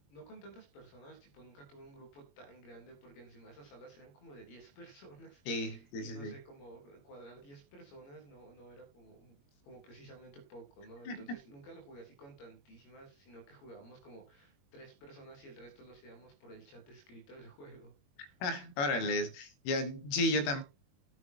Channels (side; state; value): right; late; 21 ms